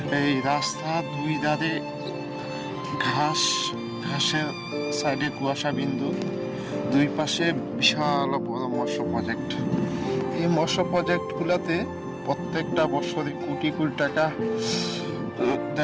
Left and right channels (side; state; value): both; identical; correlation 1.00